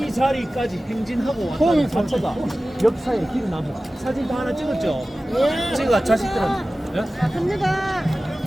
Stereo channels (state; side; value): normal; both; correlation 0.96